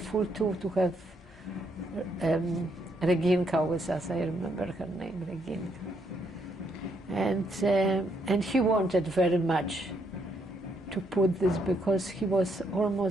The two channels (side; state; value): both; normal; correlation 0.75